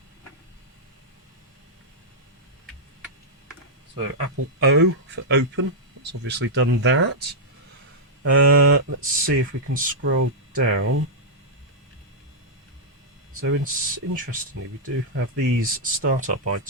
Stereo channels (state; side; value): normal; both; correlation -0.08